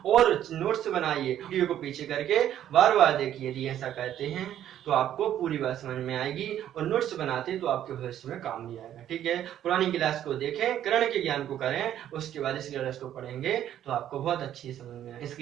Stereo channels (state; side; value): quieter; left; 11.2 dB